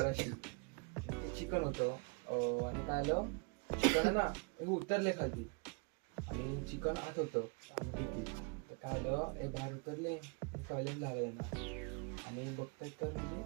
चिकन होतं. आणि काय आलं, चिकन आहे ना हे उतरले खाली आणि चिकन आत होतं डिक्कीत. तर काय आलं, हे बाहेर उतरले, टॉयलेट झालंय ना, आणि बघतात तर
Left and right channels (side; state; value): left; quieter; 33.2 dB